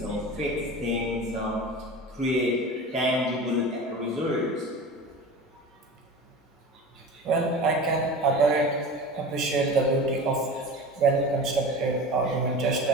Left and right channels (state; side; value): normal; both; correlation 0.33